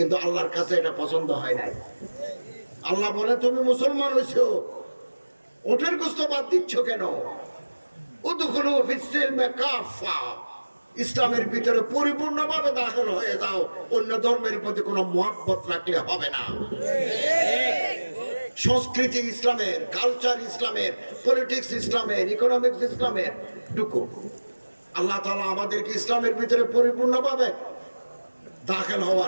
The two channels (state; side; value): inverted; both; correlation -1.00